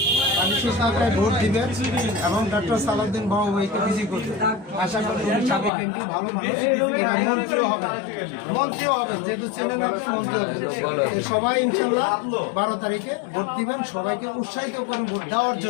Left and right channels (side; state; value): right; drops out; at 5.7 s